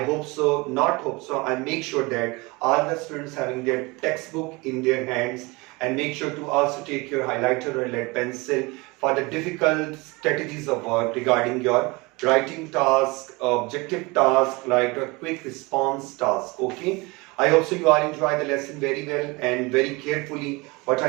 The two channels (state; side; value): quieter; left; 25.1 dB